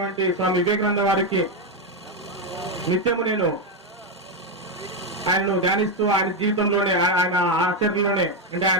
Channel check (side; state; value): both; normal; correlation 0.06